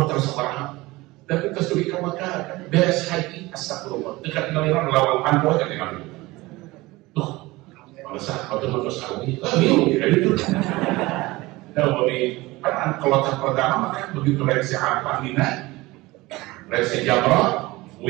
terasa warna, tapi kesuri ke Mekah beres haji astagfirullah dekat ngaliran lawang panpo aja dengan itu. Tuh, bangsa atau sawi, bingung ya itu. Nah, bagi kan kloter pertama kan begitu reaksi apa Mina, reaksi Jamrah,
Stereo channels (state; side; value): quieter; left; 20.6 dB